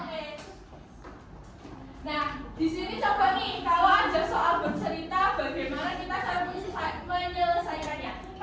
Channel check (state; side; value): identical; both; correlation 1.00